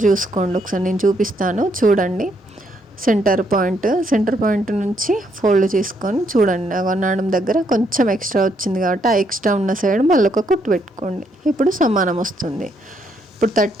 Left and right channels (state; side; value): normal; both; correlation 0.74